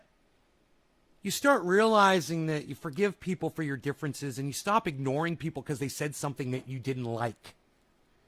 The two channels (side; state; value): both; identical; correlation 1.00